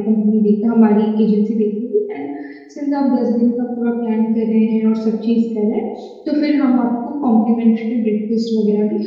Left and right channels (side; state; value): both; identical; correlation 1.00